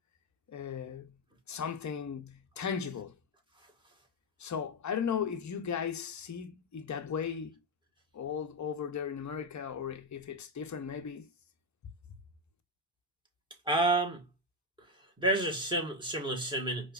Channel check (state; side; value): normal; both; correlation 0.06